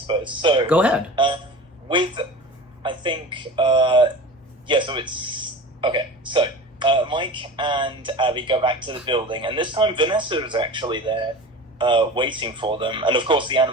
So go ahead. I think, so it's... Okay, so Mike and Abby go back to the building, and this time Vanessa is actually there waiting for them. And of course the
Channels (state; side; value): normal; both; correlation 0.34